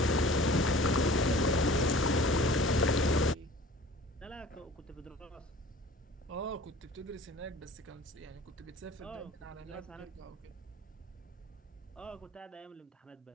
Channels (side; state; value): both; normal; correlation 0.45